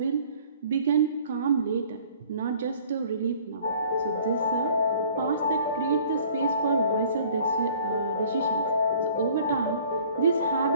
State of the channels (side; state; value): both; inverted; correlation -0.53